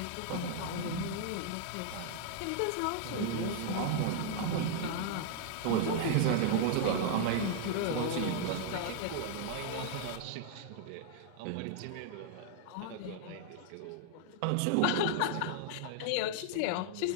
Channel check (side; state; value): both; different; correlation -0.01